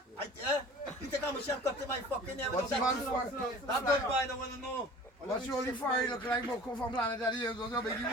You think I'm a chef cut to my fucking hair? What's the man for? That good, boy. I don't want to know. What's your only fire look like? Come from planet that years ago, big you.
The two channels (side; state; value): both; normal; correlation 0.44